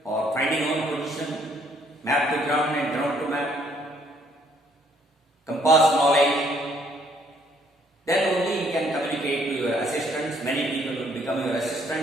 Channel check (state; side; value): normal; both; correlation 0.66